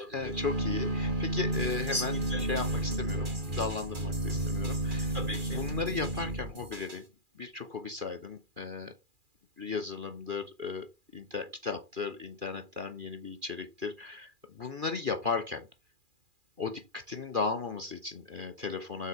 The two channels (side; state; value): left; late; 2.4 ms